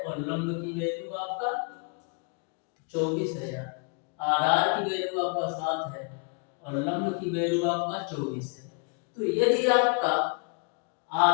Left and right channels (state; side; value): quieter; right; 36.9 dB